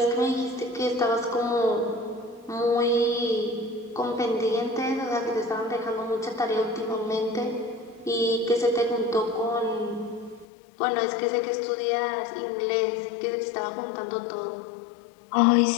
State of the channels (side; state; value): right; drops out; at 10.5 s